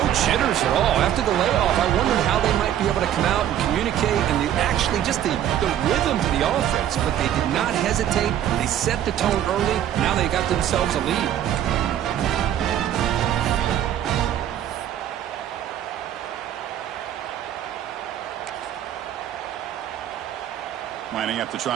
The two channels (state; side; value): quieter; left; 11.0 dB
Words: jitters at all. After the layoff, I wondered how they might be able to come out and communicate and actually just the rhythm to the offense. But they did not hesitate. They set the tone early. Now they got themselves a lead. Lining up to